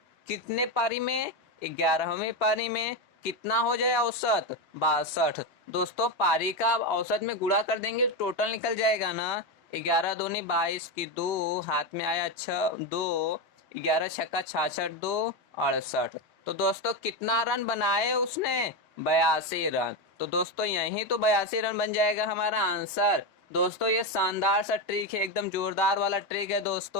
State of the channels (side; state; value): left; late; 2.8 ms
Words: कितने पारी में? 11वीं पारी में कितना हो जाए औसत? 62। दोस्तों पारी का औसत में गुणा कर देंगे, टोटल निकल जाएगा ना। 11 दूनी 22 की 2 हाथ में आया 6 2 11 छक्का 66 2 68। तो दोस्तों कितना रन बनाए उसने? 82 रन। तो दोस्तों यही तो 82 रन बन जाएगा हमारा आंसर। दोस्तों ये शानदार सा ट्रिक है, एकदम जोरदार वाला ट्रिक है